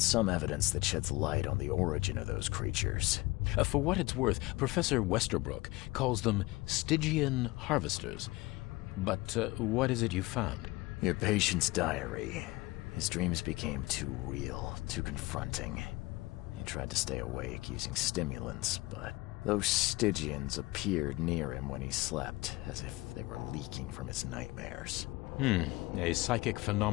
some evidence that sheds light on the origin of those creatures. For what it's worth, Professor Westerbrook calls them Stygian harvesters. But what is it you found? Your patient's diary. His dreams became too real, too confronting. He tried to stay awake using stimulants, but those Stygians appeared near him when he slept, as if they were leaking from his nightmares. A psychic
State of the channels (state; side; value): quieter; right; 21.3 dB